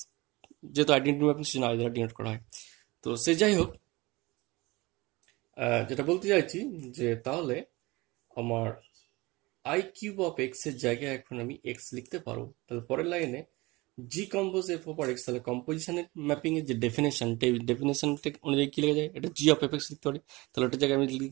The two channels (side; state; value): left; quieter; 22.5 dB